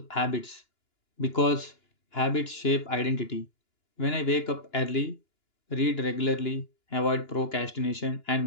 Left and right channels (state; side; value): late; right; 2.9 ms